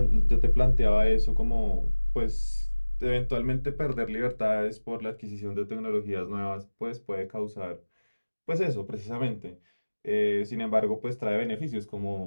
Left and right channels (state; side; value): inverted; both; correlation -1.00